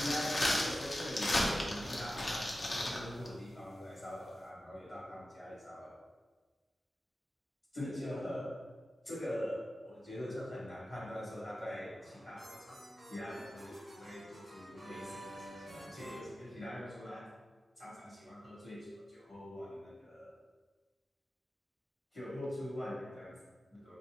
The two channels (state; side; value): normal; both; correlation 0.93